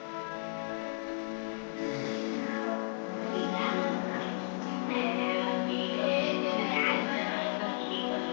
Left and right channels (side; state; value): right; silent; digital silence